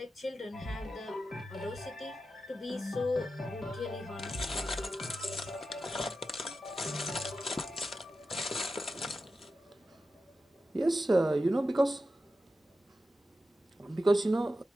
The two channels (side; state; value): both; normal; correlation 0.91